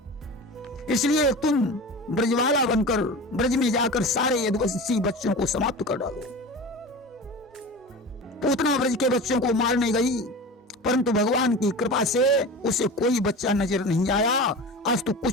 इसलिए तुम ब्रजवाला बनकर ब्रज में जाकर सारे यदुवंशी बच्चों को समाप्त कर डालो। पूतना ब्रज के बच्चों को मारने गई परंतु भगवान की कृपा से उसे कोई बच्चा नजर नहीं आया। आज तो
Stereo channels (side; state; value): both; normal; correlation 0.32